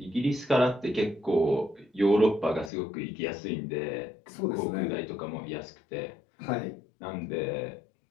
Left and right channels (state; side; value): drops out; right; at 2.7 s